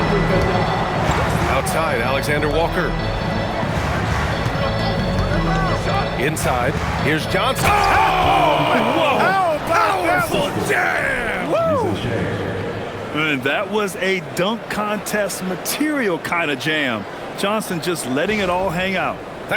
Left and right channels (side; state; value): both; identical; correlation 1.00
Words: Outside, Alexander Walker. Inside, here's Johnson. Oh! Powerful jam! And that was a dunk contest material kind of jam. Johnson just letting it all hang out.